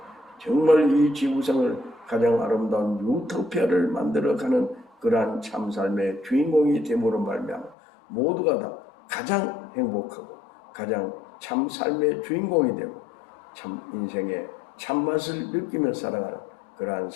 정말 이 지구상을 가장 아름다운 유토피아를 만들어가는 그러한 참삶의 주인공이 됨으로 말미암아 모두가 다 가장 행복하고 가장 참삶의 주인공이 되고 참 인생의 참맛을 느끼며 살아가는 그러한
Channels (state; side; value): drops out; right; at 7.8 s